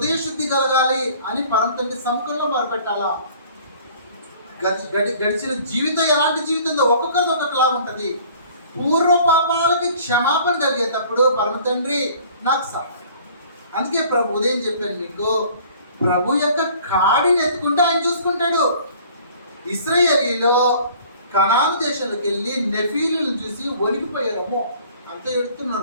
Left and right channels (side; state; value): both; inverted; correlation -0.52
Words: శుద్ధి కలగాలి అని పరమ తండ్రి సముఖంలో మొరపెట్టాలా. గడిచిన జీవితం ఎలాంటి జీవితంలో ఒక్కొక్కరిది ఒక్కొక్కలాగా ఉంటుంది. పూర్వ పాపాలకి క్షమాపణ కలిగేటప్పుడు పరమ తండ్రి నాకు సహాయం. అందుకే ప్రభు ఉదయం చెప్పాను మీకు, ప్రభు యొక్క కాడిని ఎత్తుకుంటే ఆయన చూసుకుంటాడు. ఇశ్రాయేలీలో కనాను దేశంలోకి వెళ్ళి నెఫీలను చూసి వణికిపోయారమ్మో, అంత